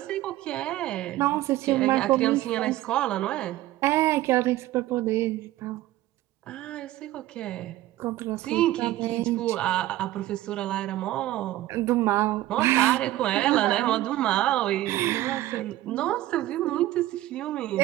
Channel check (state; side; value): quieter; left; 15.5 dB